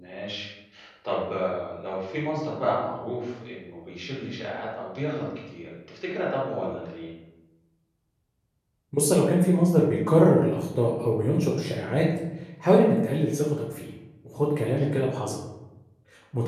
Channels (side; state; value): both; identical; correlation 1.00